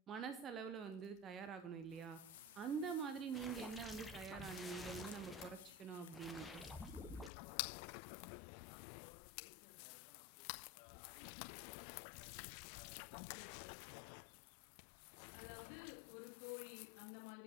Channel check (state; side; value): drops out; right; at 7.3 s